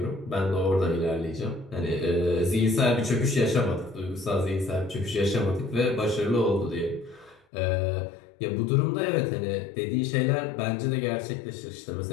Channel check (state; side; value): drops out; right; at 7.4 s